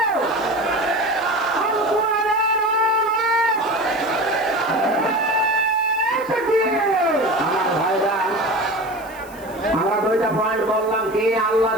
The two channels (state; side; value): noise; left; hiss, 22 dB below the sound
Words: আমরা দুইটা পয়েন্ট বললাম, কি আল্লাহ